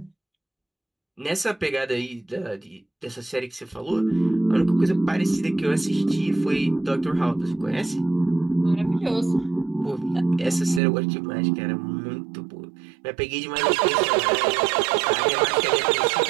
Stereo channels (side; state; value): left; drops out; at 10.8 s